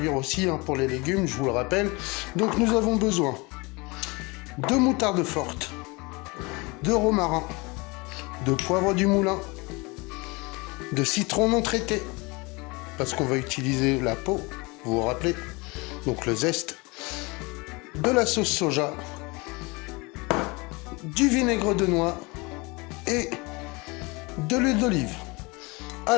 aussi pour les légumes, je vous le rappelle, donc nous avons besoin de moutarde forte, de romarin, de poivre du moulin, de citron non traité, parce qu'on va utiliser la peau, vous vous rappelez, donc le zeste, de la sauce soja, du vinaigre de noix et de l'huile d'olive.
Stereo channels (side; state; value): right; quieter; 26.3 dB